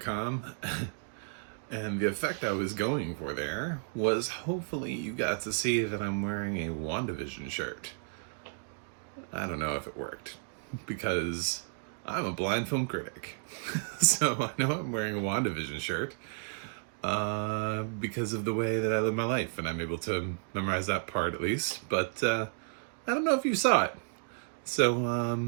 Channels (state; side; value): silent; left; digital silence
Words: And the effect I was going for there was hopefully you got to see that I'm wearing a WandaVision shirt. I don't know if it worked because I'm a blind film critic. So I know I'm wearing a WandaVision shirt because of the way that I live my life, and I'm able to memorize that part at least. But I don't know if you saw it.